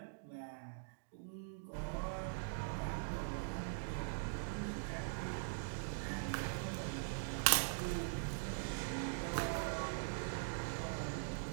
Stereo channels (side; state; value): left; silent; digital silence